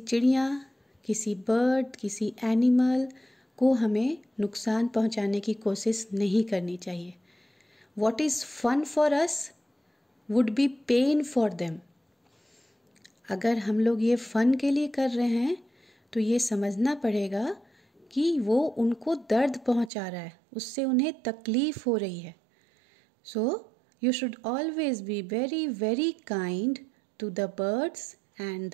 किसी बर्ड, किसी एनिमल को हमें नुकसान पहुंचाने की कोशिश नहीं करनी चाहिए. What is fun for us would be pain for them. अगर हम लोग ये फ़न के लिए कर रहे हैं तो ये समझना पड़ेगा कि वो उनको दर्द पहुंचा रहा है, उससे उन्हें तकलीफ़ हो रही है. So you should always be very very kind to the birds and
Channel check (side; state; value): left; drops out; at 19.9 s